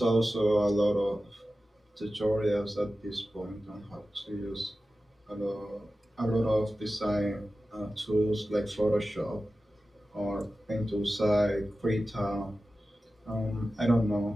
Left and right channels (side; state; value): both; normal; correlation 0.94